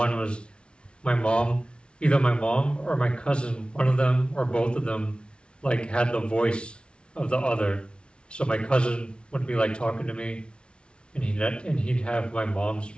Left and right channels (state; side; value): late; right; 0.058 ms